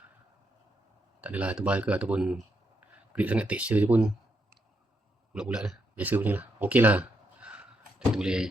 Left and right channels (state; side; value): normal; both; correlation 0.80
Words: tak adalah tebal ke ataupun grip sangat, texture je pun bulat-bulat lah, biasa punya lah, ok lah. Kita boleh